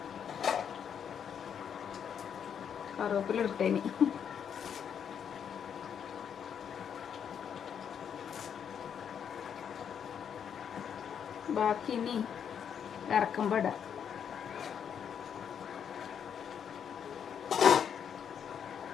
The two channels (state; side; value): quieter; right; 8.0 dB